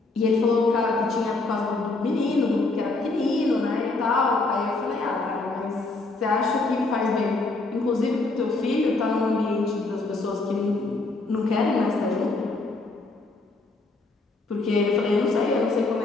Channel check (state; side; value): quieter; right; 3.4 dB